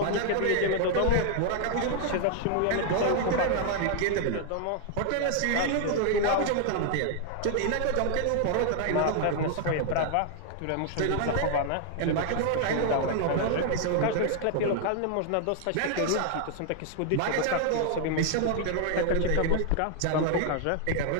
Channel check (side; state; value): both; different; correlation 0.00